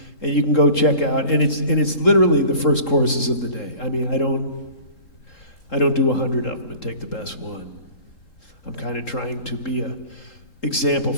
and you can go check out, and it's literally the first choruses of the day. I mean, I don't do 100 of them and take the best one. I'm kind of trying to be a example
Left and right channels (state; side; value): late; right; 3.7 ms